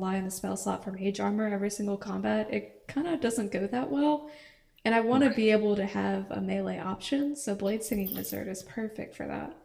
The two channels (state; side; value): identical; both; correlation 1.00